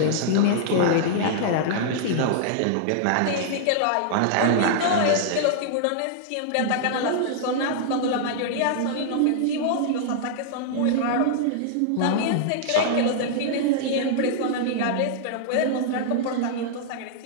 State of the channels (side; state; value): both; different; correlation -0.01